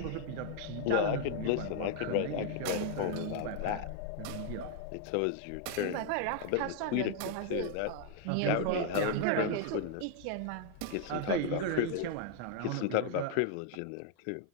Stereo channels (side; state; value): both; different; correlation 0.00